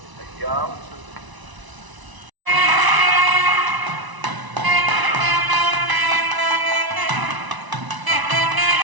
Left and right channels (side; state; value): left; late; 1.0 ms